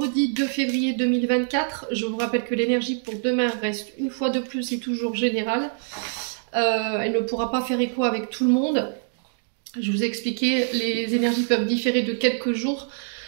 2 février 2024. Je vous rappelle que l'énergie pour demain reste une fois de plus et toujours générale. Elle ne pourra pas faire écho avec tout le monde. Je vous ai expliqué, les énergies peuvent différer de quelques jours.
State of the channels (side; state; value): left; silent; digital silence